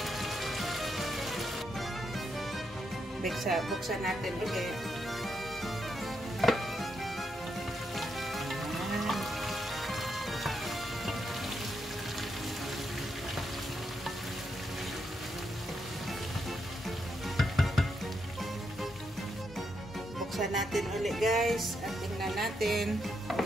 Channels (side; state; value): both; normal; correlation 0.81